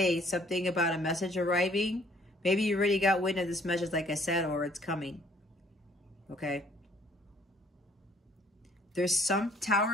something about a message arriving. Maybe you already got wind of this message, like I said, or it's coming. Okay. There's some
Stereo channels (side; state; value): both; normal; correlation 0.60